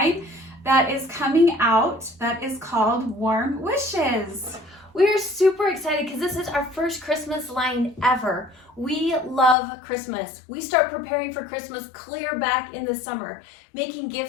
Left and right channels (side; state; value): right; drops out; at 9.6 s